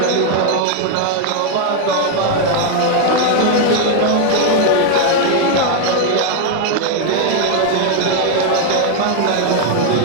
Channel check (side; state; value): both; different; correlation 0.01